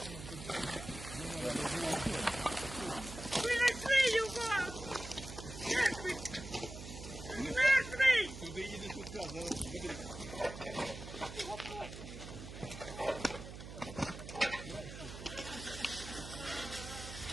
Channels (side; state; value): right; noise; hum, 11 dB below the sound